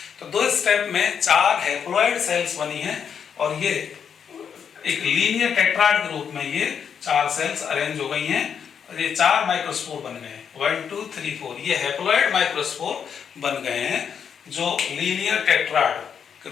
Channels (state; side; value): quieter; right; 7.4 dB